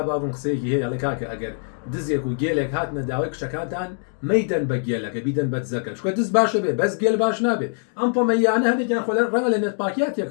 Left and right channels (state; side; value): silent; right; 57 dB below the other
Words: باگم قسەیەکی هەیە لە کاکە ئەگەر دزێک و گێلێک هاتنە داوای کشەکانتان مەیدەن بە گێلەکە بیدەن بە دزەکە چکە دز باشە بێ بەس گێل باش نابێ ئەم پۆمەیانە هەنێکیان خۆ ڕەنگە لە نێتپاکیات